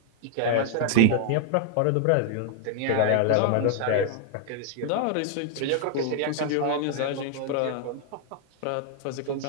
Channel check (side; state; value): both; different; correlation -0.01